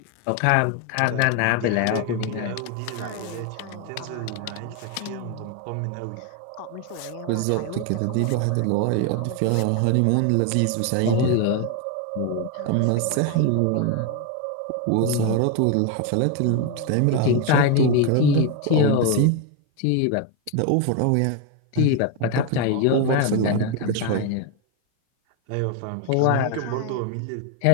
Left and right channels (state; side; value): different; both; correlation 0.01